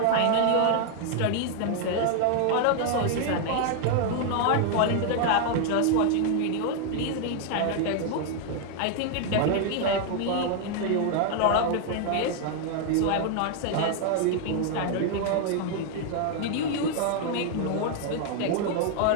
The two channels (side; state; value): both; different; correlation 0.00